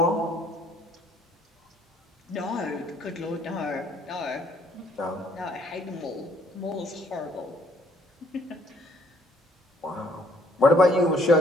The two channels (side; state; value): both; normal; correlation 0.64